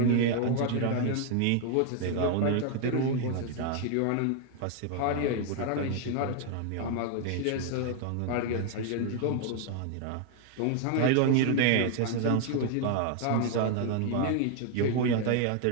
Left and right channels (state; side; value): different; both; correlation 0.00